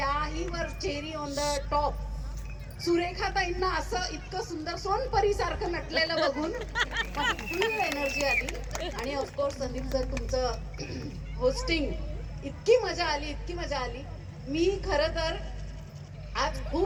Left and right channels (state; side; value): identical; both; correlation 1.00